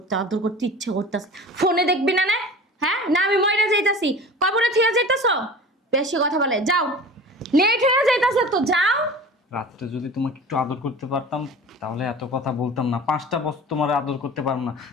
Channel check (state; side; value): normal; both; correlation 0.38